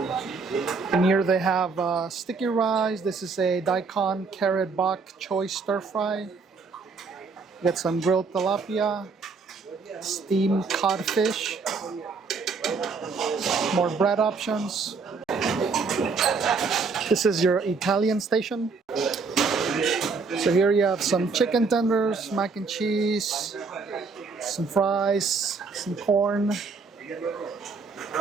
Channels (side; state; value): left; quieter; 4.7 dB